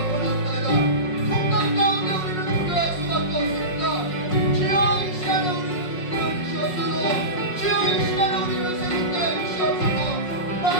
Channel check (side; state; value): right; late; 5.5 ms